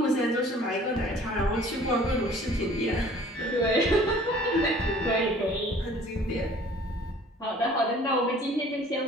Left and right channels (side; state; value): both; normal; correlation 0.52